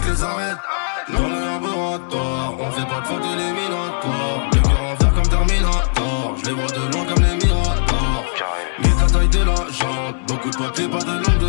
les arêtes. Dans le laboratoire, on fait pas de faute éliminatoire. Le cœur en fer comme Terminator, je les vois de loin comme les Miradors. Vite la taille de la jambe, beaucoup de papier, pas de langue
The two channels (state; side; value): silent; right; 66 dB below the other